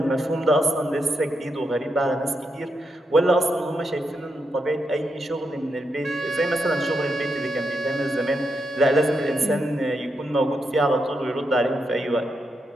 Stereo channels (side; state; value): both; normal; correlation 0.83